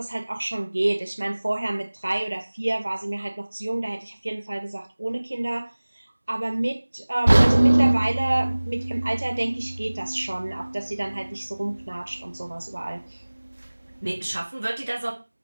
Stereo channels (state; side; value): inverted; both; correlation -1.00